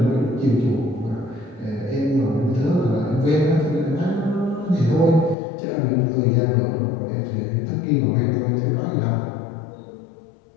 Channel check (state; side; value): drops out; right; at 5.4 s